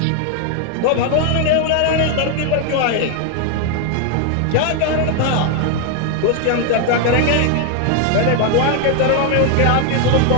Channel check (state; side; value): different; both; correlation 0.00